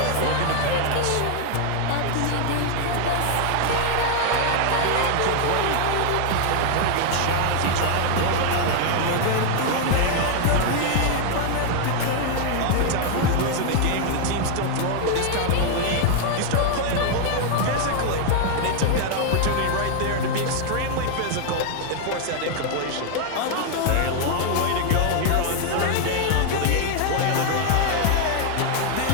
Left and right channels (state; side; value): different; both; correlation 0.00